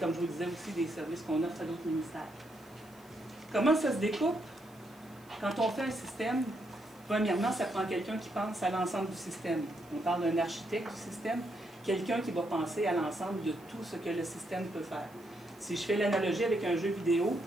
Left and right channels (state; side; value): noise; right; hiss, 29 dB below the sound